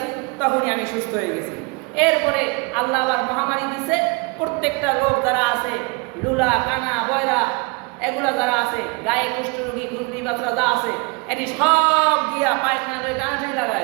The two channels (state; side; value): quieter; left; 29.3 dB